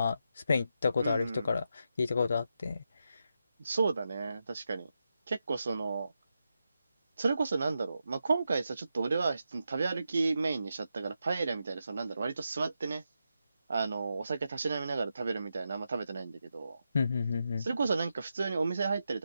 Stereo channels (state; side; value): inverted; both; correlation -0.86